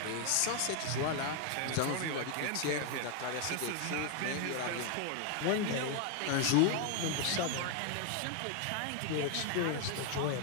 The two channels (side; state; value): both; different; correlation 0.00